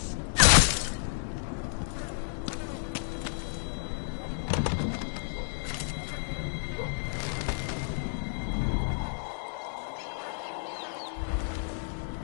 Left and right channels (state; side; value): silent; right; digital silence